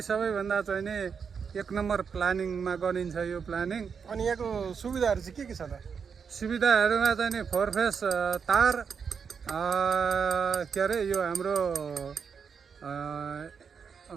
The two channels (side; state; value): left; quieter; 6.3 dB